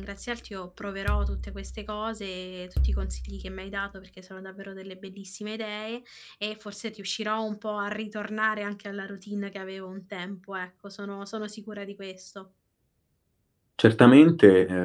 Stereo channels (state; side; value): identical; both; correlation 1.00